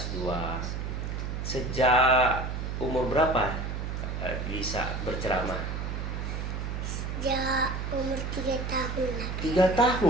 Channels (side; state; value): right; noise; hum, 4 dB below the sound